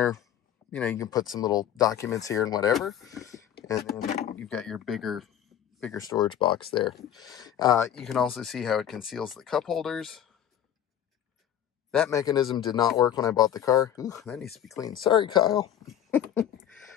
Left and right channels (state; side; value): quieter; right; 10.2 dB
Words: you know, you can put some little documents here and whatever. And then you've got your bigger storage box there. You can also see how it conceals the cup holders. That mechanism did not work when I bought the car. Ooh, that needs to be cleaned. Sorry, Kyle.